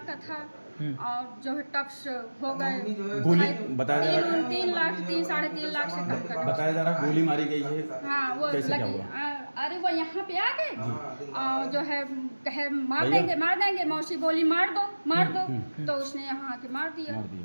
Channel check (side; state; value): both; inverted; correlation -1.00